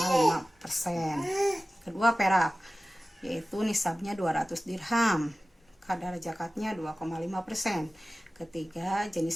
Kedua, perak, yaitu nisabnya 200 dirham. Kadar zakatnya 2,5%. Ketiga,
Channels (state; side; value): normal; both; correlation 0.96